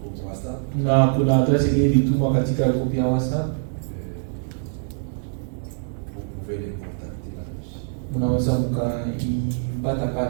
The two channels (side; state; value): left; silent; digital silence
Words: groupe WhatsApp. Na kuna adresi ile ilitumwa katika grupu ya WhatsApp, Vous pouvez les contacter là-dessus. mnaweza mkaipata